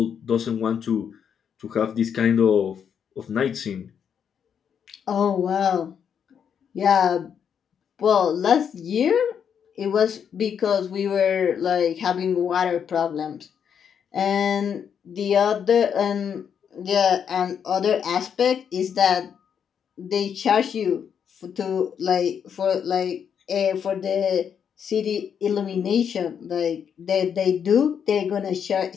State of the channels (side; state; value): right; quieter; 7.8 dB